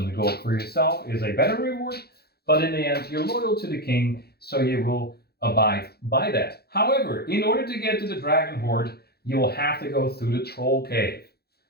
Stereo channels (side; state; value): right; late; 0.46 ms